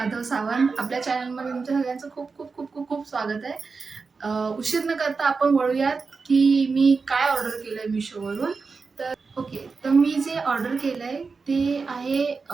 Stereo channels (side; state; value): left; quieter; 4.6 dB